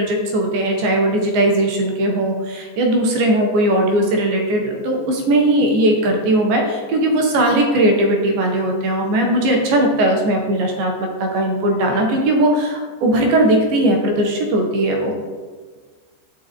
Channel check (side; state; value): left; late; 14 ms